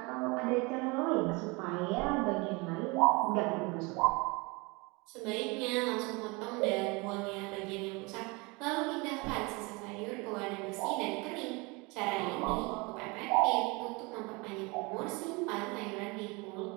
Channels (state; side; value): quieter; left; 26.9 dB